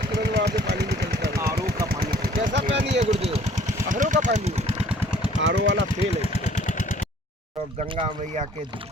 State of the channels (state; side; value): normal; both; correlation 0.56